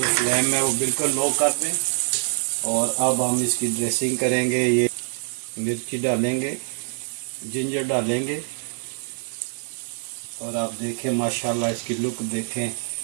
फ्लेम है वो बिल्कुल लो कर दें और अब हम इसकी ड्रेसिंग करेंगे। ये मिर्ची डालेंगे, जिंजर डालेंगे और आप देखें माशाल्लाह इसकी लुक देखें,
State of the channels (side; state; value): left; silent; digital silence